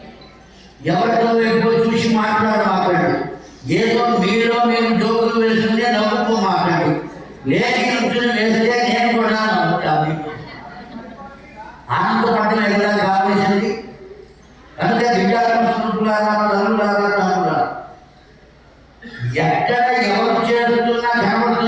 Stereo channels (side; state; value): both; identical; correlation 1.00